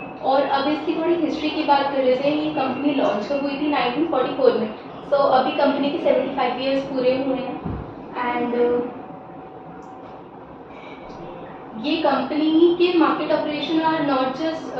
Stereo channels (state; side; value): identical; both; correlation 1.00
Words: और अब इसकी थोड़ी हिस्ट्री की बात कर लेते हैं। ये कंपनी लॉन्च कब हुई थी? 1944 में। तो अभी कंपनी के 75 ईयर्स पूरे हुए हैं, एंड ये कंपनी के market operation are not just